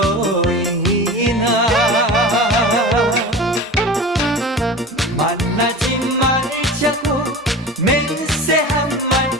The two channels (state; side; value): normal; both; correlation 0.33